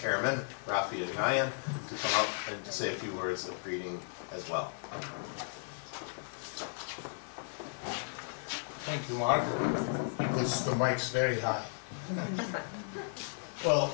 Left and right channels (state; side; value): silent; right; digital silence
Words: Razmik Panossian, to come up and to say a few words of greeting as well. Thank you, Mark, because the mic's very high.